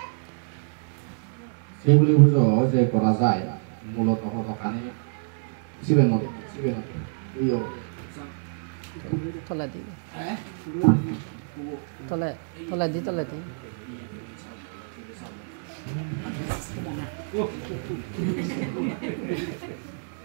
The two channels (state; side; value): silent; left; digital silence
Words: 세울려 보죠. 제 거라사이 물어도 허덕하니 집에 놓대. 집에 놓대. 이요. Tola di. Tola di.